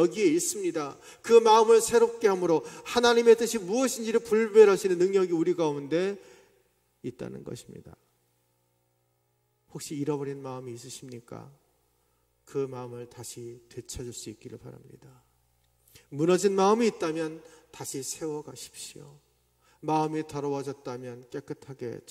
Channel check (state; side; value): identical; both; correlation 1.00